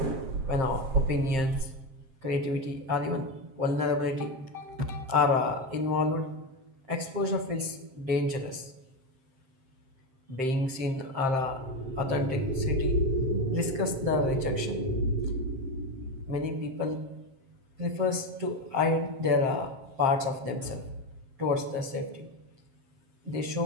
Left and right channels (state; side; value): late; left; 7.5 ms